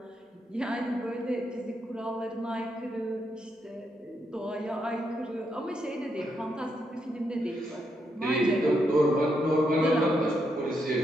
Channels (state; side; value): normal; both; correlation 0.80